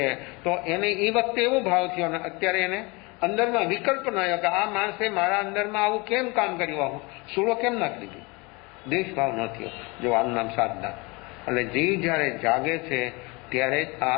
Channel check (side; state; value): right; quieter; 26.7 dB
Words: તો એને એ વખતે એવો ભાવ થયો અને અત્યારે એને અંદરમાં વિકલ્પ ન આવ્યો કે આ માણસે મારા અંદરમાં આવું કેમ કામ કર્યું, આવું સૂળો કેમ નાખી દીધી? દ્વેષ ભાવ ન થયો. જો આનું નામ સાધના. એટલે જીવ જ્યારે જાગે છે ત્યારે જ આ